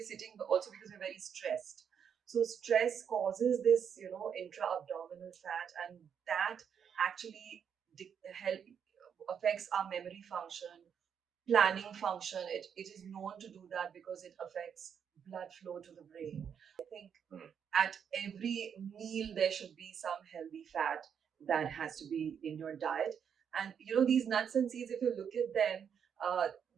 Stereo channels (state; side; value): quieter; left; 7.7 dB